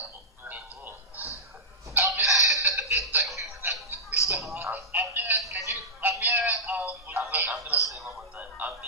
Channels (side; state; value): both; normal; correlation -0.15